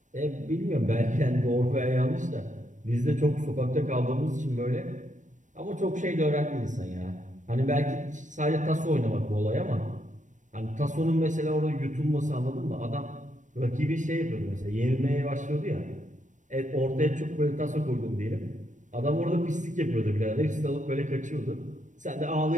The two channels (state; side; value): late; left; 0.36 ms